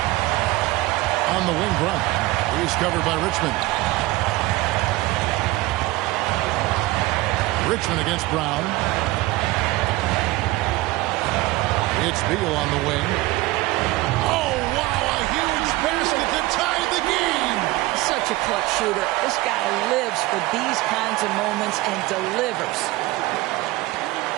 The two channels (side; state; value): left; quieter; 19.2 dB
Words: On the wing, Brown. He's covered by Richmond. Richmond against Brown. It's Beal on the wing. Oh, wow, a huge basket to tie the game. Such a clutch shooter. This guy lives for these kinds of moments and delivers.